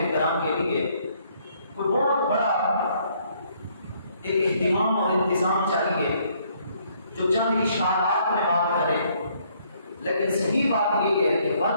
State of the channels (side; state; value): both; inverted; correlation -0.66